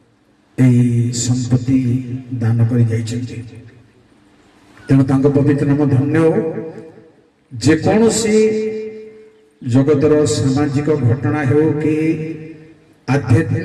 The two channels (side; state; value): both; identical; correlation 1.00